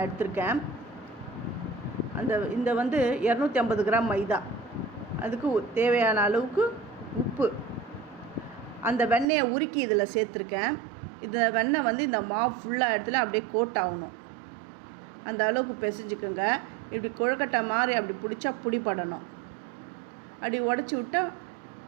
எடுத்திருக்கேன். இந்த 250 கிராம் மைதா, அதுக்கு தேவையான அளவுக்கு உப்பு, அந்த வெண்ணெயை உருக்கி இதில் சேர்த்துருக்கேன். இந்த வெண்ணெய் இந்த மாவு ஃபுல்லாக இடத்துல அப்படியே கோட் ஆகணும். அந்த அளவுக்கு பிசைஞ்சுக்கோங்க. இப்படி கொழுக்கட்டை மாதிரி அப்படி பிடிச்சா பிடிப்படணும். அப்படி உடச்சி விட்டால்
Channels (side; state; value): left; drops out; at 9.2 s